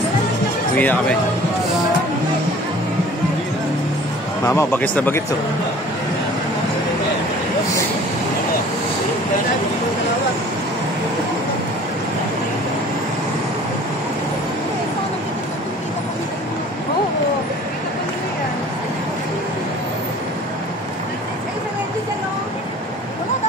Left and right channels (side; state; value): both; normal; correlation 0.48